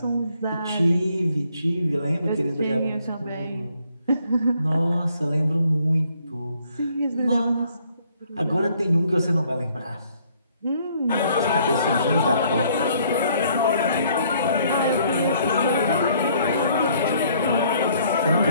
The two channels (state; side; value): inverted; both; correlation -0.64